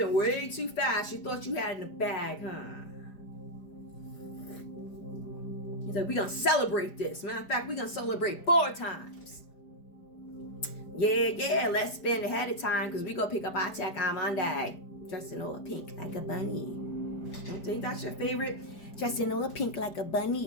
way too fast. You thought you had it in the bag, huh? He's like, we're going to celebrate this. Matter of fact, we're going to celebrate 4 times. Yeah, let's spend ahead of time because we're going to pick up our check on Monday. Dressed in all pink like a bunny. Don't think that's your favorite? Dressed in all pink like a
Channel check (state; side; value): late; right; 5.0 ms